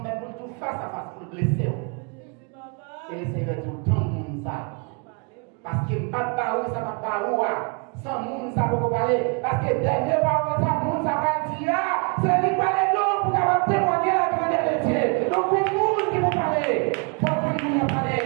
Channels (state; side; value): quieter; left; 34.9 dB